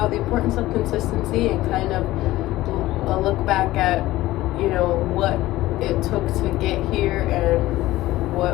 the importance of consistency and kind of a look back at, what it took to get here and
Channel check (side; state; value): right; quieter; 16.8 dB